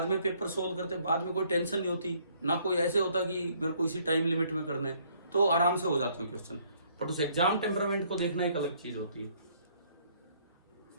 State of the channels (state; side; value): inverted; both; correlation -0.64